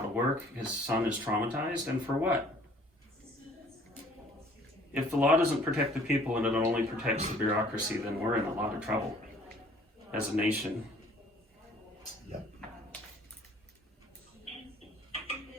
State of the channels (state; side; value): normal; both; correlation 0.56